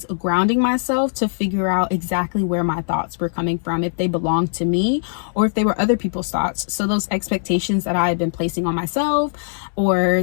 grounding myself to figure out exactly where my thoughts were coming from, if they belonged to me or if they were other people's thoughts. So those expectations that I had been placing on myself,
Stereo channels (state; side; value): silent; right; 65 dB below the other